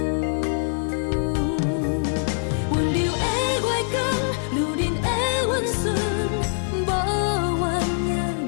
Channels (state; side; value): silent; right; digital silence